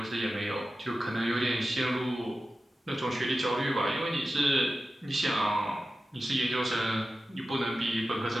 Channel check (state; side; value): normal; both; correlation 0.93